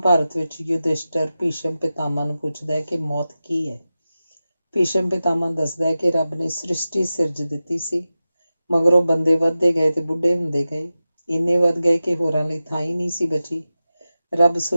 ਵਿੱਚ ਯੁਧਿਸ਼ਟਰ ਭੀਸ਼ਮ ਪਿਤਾਮਾ ਨੂੰ ਪੁੱਛਦਾ ਹੈ ਕਿ ਮੌਤ ਕੀ ਹੈ। ਭੀਸ਼ਮ ਪਿਤਾਮਾ ਦੱਸਦਾ ਹੈ ਕਿ ਰੱਬ ਨੇ ਸ੍ਰਿਸ਼ਟੀ ਸਿਰਜ ਦਿੱਤੀ ਸੀ, ਮਗਰੋਂ ਬੰਦੇ ਵੱਧਦੇ ਗਏ ਤੇ ਬੁੱਢੇ ਹੁੰਦੇ ਗਏ, ਇੰਨੇ ਵੱਧ ਗਏ ਕਿ ਹੋਰਾਂ ਲਈ ਥਾਂ ਹੀ ਨਹੀਂ ਸੀ ਬਚੀ। ਰੱਬ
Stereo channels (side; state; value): both; inverted; correlation -0.94